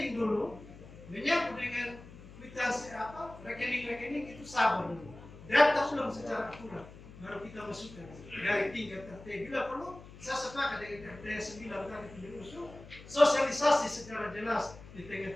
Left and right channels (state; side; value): noise; left; hum, 17 dB below the sound